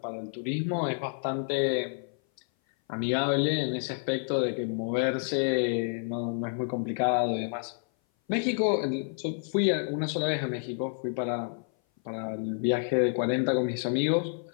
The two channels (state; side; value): silent; right; 57 dB below the other